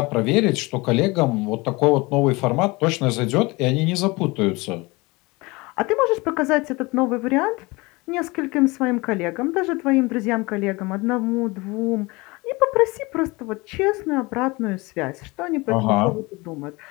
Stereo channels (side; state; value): right; quieter; 24.1 dB